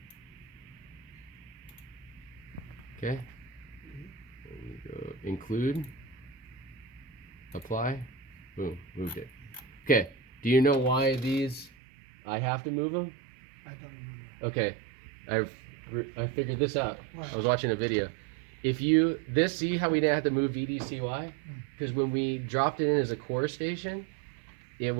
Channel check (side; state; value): left; drops out; at 11.7 s